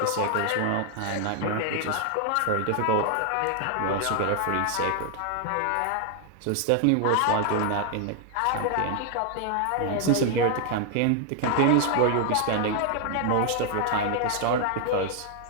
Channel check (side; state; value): both; different; correlation 0.00